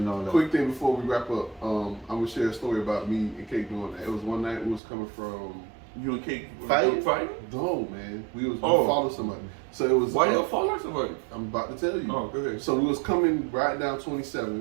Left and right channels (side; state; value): left; drops out; at 4.8 s